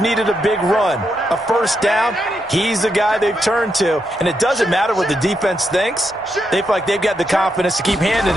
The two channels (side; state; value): both; normal; correlation 0.82